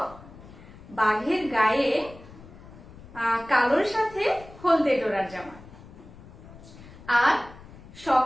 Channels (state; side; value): noise; left; rumble, 19 dB below the sound